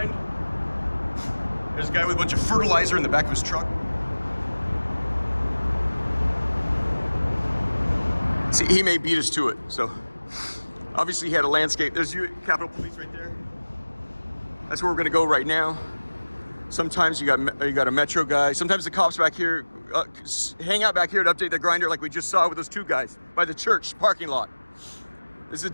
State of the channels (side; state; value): both; inverted; correlation -1.00